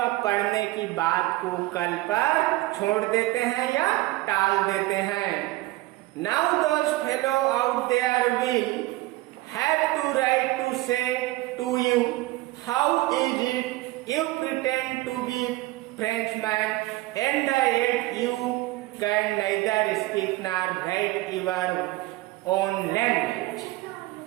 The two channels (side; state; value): left; quieter; 19.0 dB